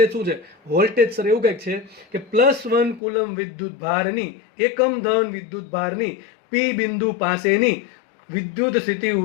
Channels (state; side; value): drops out; right; at 3.0 s